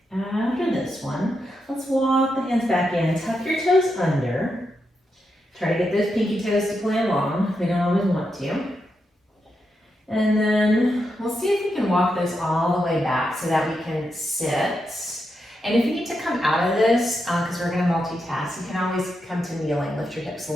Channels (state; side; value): normal; both; correlation 0.85